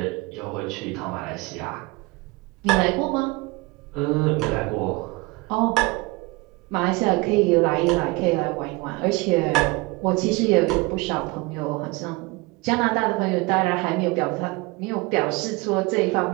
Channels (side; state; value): left; quieter; 24.4 dB